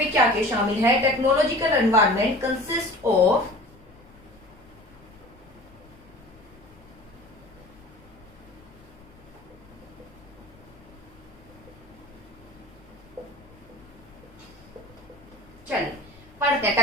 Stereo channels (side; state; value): left; noise; rumble, 25 dB below the sound